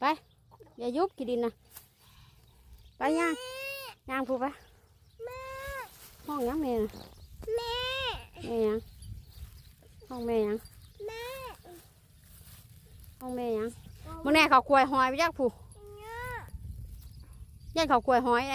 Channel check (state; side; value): identical; both; correlation 1.00